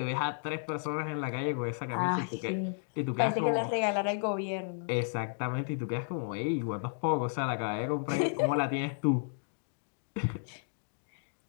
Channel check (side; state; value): right; silent; digital silence